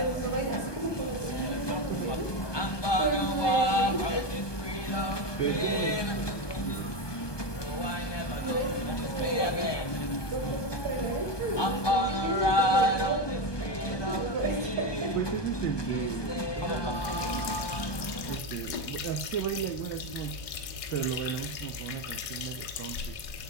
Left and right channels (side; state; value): right; late; 1.2 ms